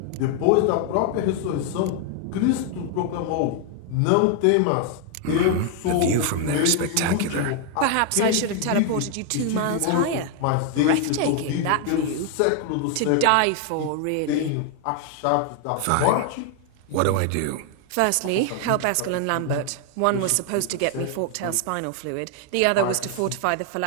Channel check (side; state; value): both; different; correlation 0.00